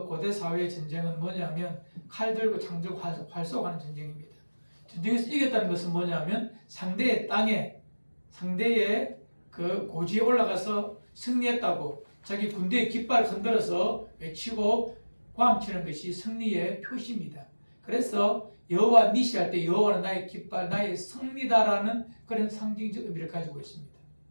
고대 사회의 전쟁은 뭐냐면 칼 들고 창 들고 활 쏘가는 전쟁입니다. 전쟁에서 이겼다는 것은 뭐냐면 상대의 땅에 상대의 그 고지에 올라가서 승리했다고 자기 군대의 깃발을 흔들어서 외치고 고함치는 것이 승리의 표시입니다. 그래서 여호와 니시 할 때 여호와는 나의 깃발, 나의 승리다라는 그런 상징적 의미를 가지고 있습니다.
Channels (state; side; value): inverted; both; correlation -1.00